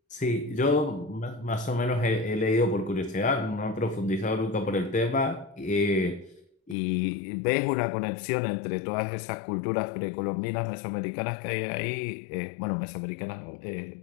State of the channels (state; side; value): drops out; right; at 6.8 s